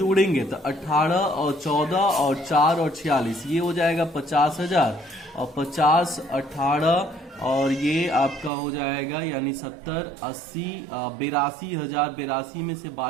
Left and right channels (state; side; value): drops out; left; at 8.5 s